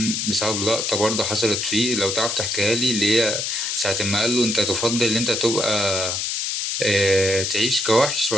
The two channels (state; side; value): noise; left; hiss, 1 dB below the sound